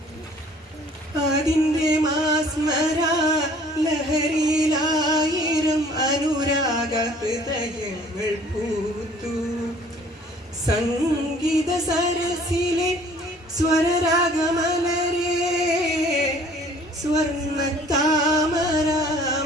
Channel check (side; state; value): both; normal; correlation 0.54